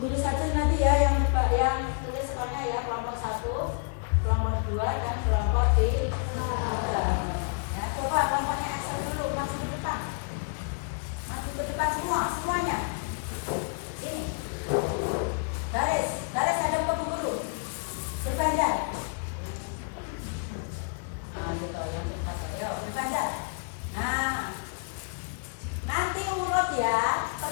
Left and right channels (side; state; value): right; quieter; 36.9 dB